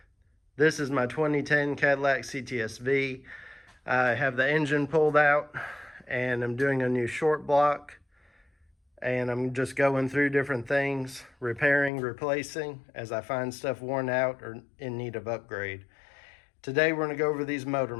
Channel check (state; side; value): drops out; right; at 11.9 s